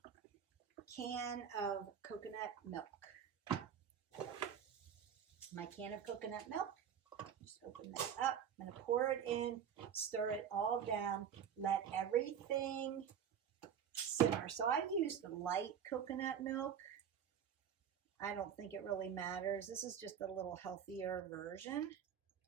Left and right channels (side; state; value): left; quieter; 8.3 dB